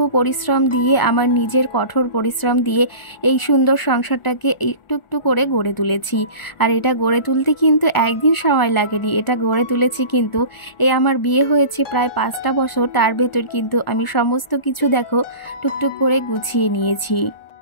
পরিশ্রম দিয়ে, আমার নিজের কঠোর পরিশ্রম দিয়ে এই সুন্দর সংসারটাকে একটু একটু করে গড়ে তুলেছি। আর এটা গড়ে তুলতে কিন্তু একদিন সময় লাগেনি, এটা গড়ে তুলেছি কিন্তু এই আমার বিয়ে হয়েছে প্রায় 5টা বছর, তার ভেতর কিন্তু আমি সমস্ত কিছু দেখো টুকটুক করে গুছিয়ে নিয়েছি।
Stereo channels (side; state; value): right; late; 1.4 ms